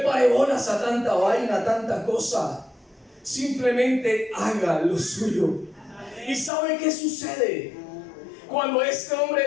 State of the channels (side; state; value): right; drops out; at 6.5 s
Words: bolas a tanta vaina, a tanta cosa. Simplemente haga lo suyo. ¿Y sabe qué sucede? Cuando este